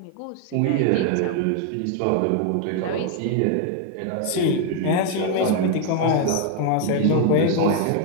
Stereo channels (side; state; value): both; different; correlation 0.00